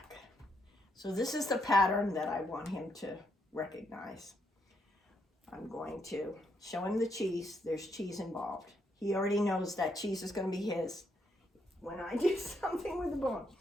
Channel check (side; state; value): both; normal; correlation 0.77